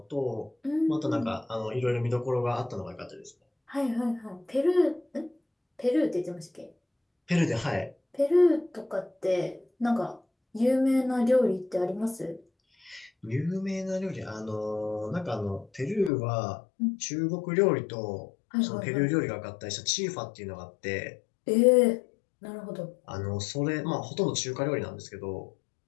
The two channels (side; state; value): right; drops out; at 16.1 s